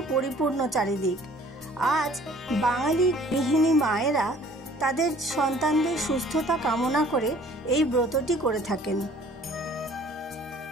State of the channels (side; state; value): both; normal; correlation 0.54